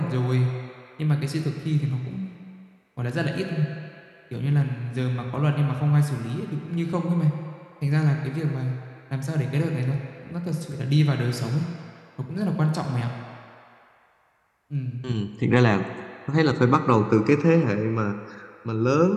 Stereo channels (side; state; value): both; identical; correlation 1.00